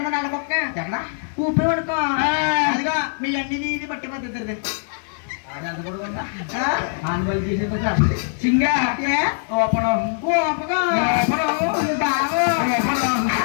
నల్లకొక్క ఎక్కడ ఊపి పడుకో అదిగా మీ అన్ని ఇది పట్టి పద్ధతి సింగా ఓపనం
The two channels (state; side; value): silent; right; 60 dB below the other